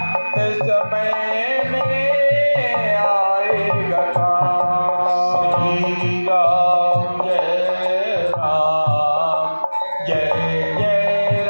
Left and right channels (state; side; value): inverted; both; correlation -1.00